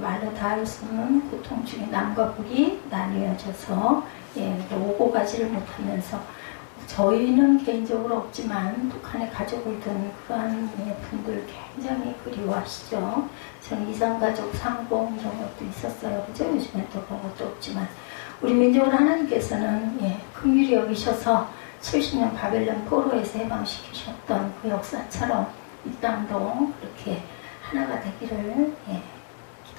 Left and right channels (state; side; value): silent; right; digital silence